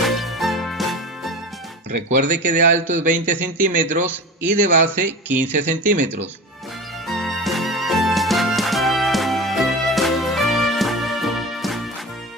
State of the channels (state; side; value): normal; both; correlation 0.31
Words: Recuerde que de alto es 20 centímetros y de base 15 centímetros.